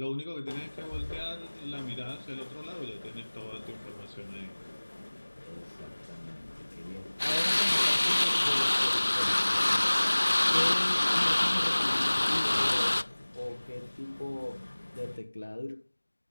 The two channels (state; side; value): inverted; both; correlation -1.00